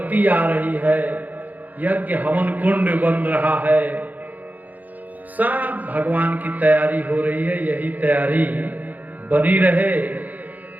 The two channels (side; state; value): left; late; 0.081 ms